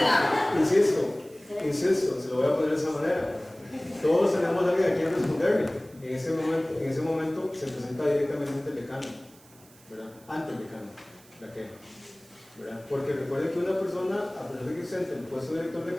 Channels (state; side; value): noise; right; hiss, 25 dB below the sound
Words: Insisto, se lo voy a poner de esa manera. Todos tenemos a alguien a quien responderle. En ese momento se presenta directamente ante el decano, ¿verdad? Ante el decano, la queja, ¿verdad? Porque recuerden que una persona, a pesar de que esté en el puesto de director de